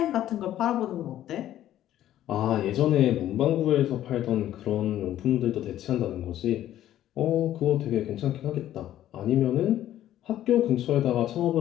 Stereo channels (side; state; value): right; quieter; 12.6 dB